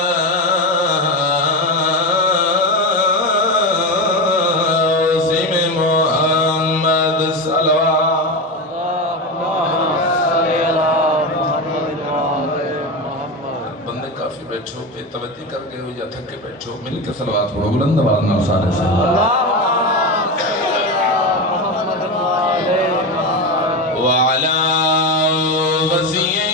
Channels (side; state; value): both; normal; correlation 0.18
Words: بندے کافی بیٹھو پہ توجہ کر کے ہو یا تھک کے بیٹھو مل کے صلوات پڑھو بلند آواز نال سارے سے وعلى وزيه